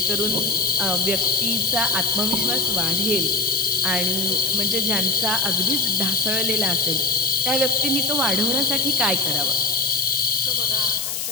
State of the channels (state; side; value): noise; left; hiss, 3 dB below the sound